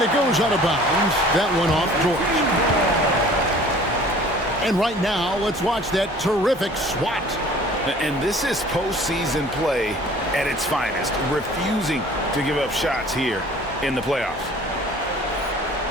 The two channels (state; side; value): normal; both; correlation 0.49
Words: it goes out of bounds. That one off George. And right now, let's watch that terrific swat. And this is postseason play at its finest, refusing to give up shots here in the playoffs.